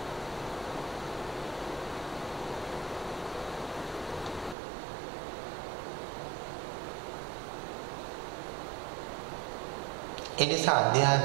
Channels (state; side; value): drops out; left; at 4.5 s